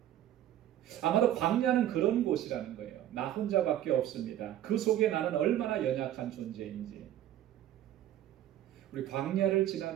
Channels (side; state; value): left; quieter; 12.1 dB